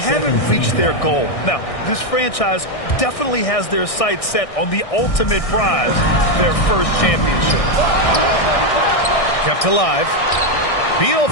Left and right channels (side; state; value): right; late; 1.6 ms